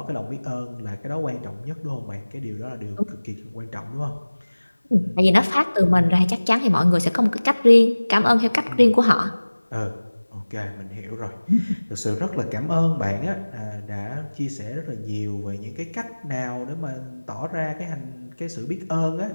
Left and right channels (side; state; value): both; inverted; correlation -1.00